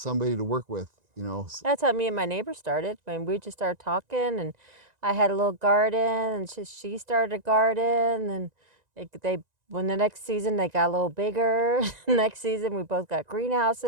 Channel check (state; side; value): late; left; 1.9 ms